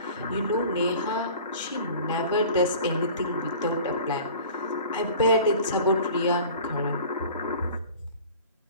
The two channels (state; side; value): inverted; both; correlation -0.44